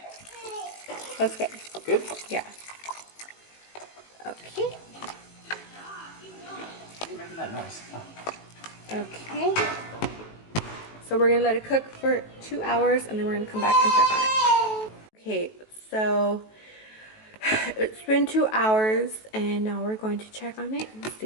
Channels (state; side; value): late; right; 18 ms